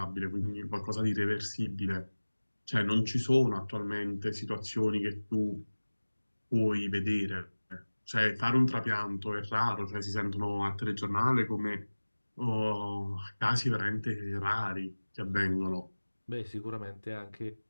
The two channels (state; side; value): inverted; both; correlation -1.00